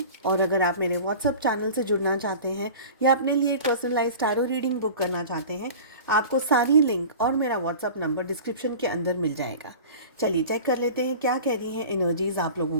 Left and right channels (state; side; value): inverted; both; correlation -0.38